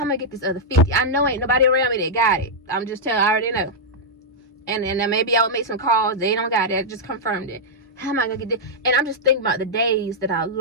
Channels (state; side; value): normal; both; correlation -0.05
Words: am I get this other 50? I know ain't nobody around me that got it. I'm just telling, I already know. And then maybe I would make some calls. They don't got it. I just confirmed it. How am I gonna get this? And I'm just thinking about the days that I